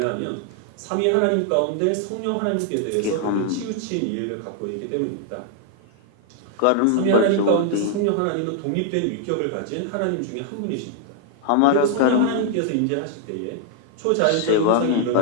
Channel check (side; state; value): both; different; correlation 0.00